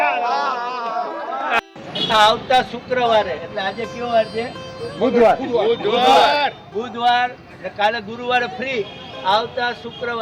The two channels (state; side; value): identical; both; correlation 1.00